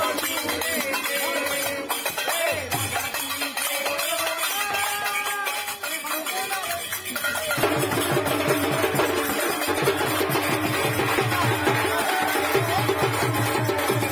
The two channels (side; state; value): both; identical; correlation 1.00